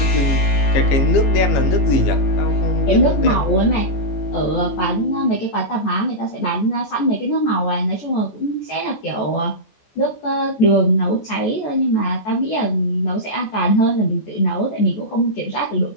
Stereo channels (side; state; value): right; late; 14 ms